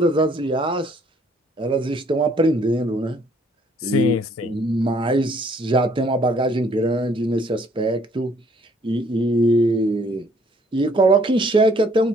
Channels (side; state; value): both; normal; correlation 0.62